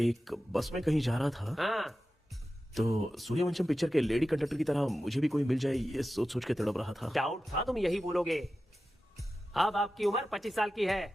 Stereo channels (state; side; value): normal; both; correlation 0.93